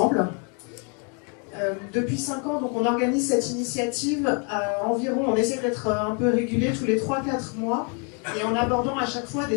Depuis 5 ans, donc, on organise cette initiative environ, on essaie d'être un peu régulier tous les 3-4 mois, et en abordant à chaque fois des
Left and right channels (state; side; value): quieter; right; 37.0 dB